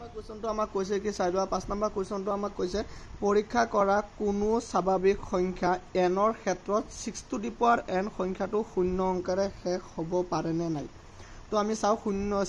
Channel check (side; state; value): both; identical; correlation 1.00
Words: কুৱেশ্যনটো আমাক কৈছে কি চাই লোৱা। 5 নম্বৰ কুৱেশ্যনটো আমাক কৈছে পৰীক্ষা কৰা কোনো স্বাভাৱিক সংখ্যা এনৰ ক্ষেত্ৰত 6 টু দি পাৱাৰ n সংখ্যাটো 0 অংকেৰে শেষ হ'ব পাৰেনে নাই। তো আমি চাওঁ